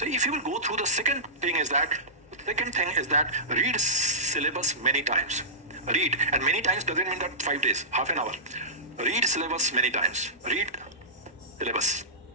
if you will go through the second thing is that read syllabus many times. Read, and many times doesn't mean that 5 days, half an hour. Read syllabus many times. Read syllabus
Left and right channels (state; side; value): normal; both; correlation -0.18